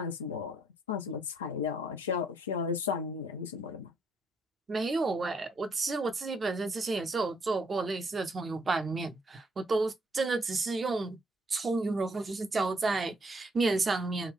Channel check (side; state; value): both; normal; correlation 0.70